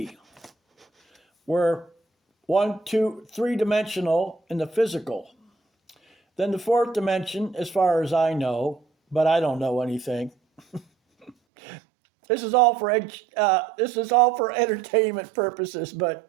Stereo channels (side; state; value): left; drops out; at 11.3 s